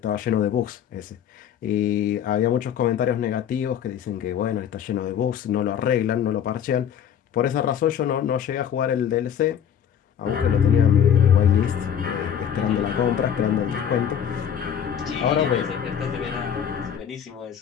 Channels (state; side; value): quieter; right; 8.8 dB